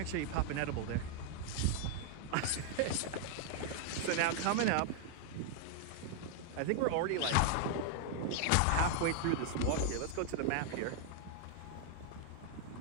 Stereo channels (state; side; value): different; both; correlation 0.00